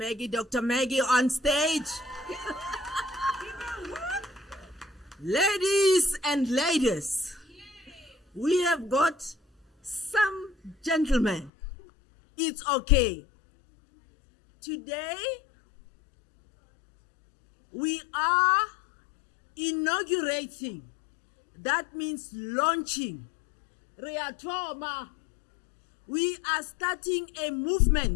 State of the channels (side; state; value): right; drops out; at 11.5 s